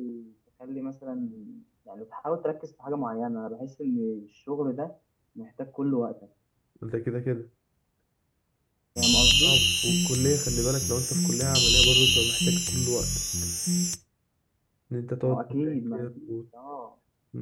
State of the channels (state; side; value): identical; both; correlation 1.00